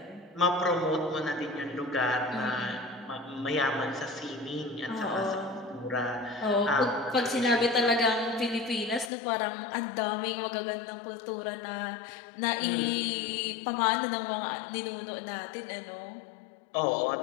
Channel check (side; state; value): right; drops out; at 9.1 s